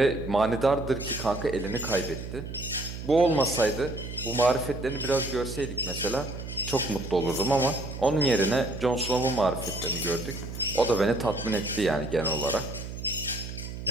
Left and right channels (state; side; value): noise; right; hum, 9 dB below the sound